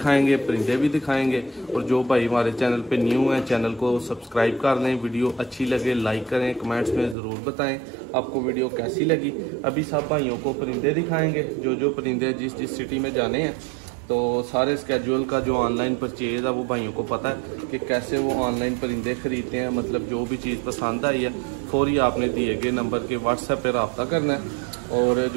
परिंदे भी दिखाएंगे। और जो भाई हमारे चैनल पे न्यू हैं, चैनल को सब्सक्राइब कर लें। वीडियो अच्छी लगे लाइक करें, कमेंट्स में ज़रूर बताएं आपको वीडियो कैसी लगी। अभी सब भाइयों को परिंदे दिखाएंगे, जो परिंदे जिस सिटी में जाने हैं। तो सारे स्केड्यूल का जो ऑनलाइन परचेज़ है वो भाइयों को पता है कि कैसे वो ऑनलाइन परिंदे ख़रीदते हैं। मतलब जो भी चीज़ पसंद आई है फौरी आपने दिए गए नंबर के व्हाट्सएप पर रब्ता करना है। और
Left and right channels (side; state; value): left; drops out; at 7.2 s